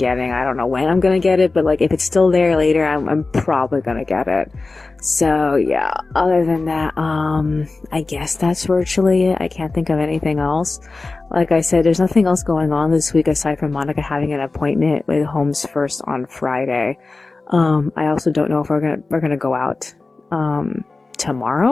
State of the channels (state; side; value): quieter; right; 3.6 dB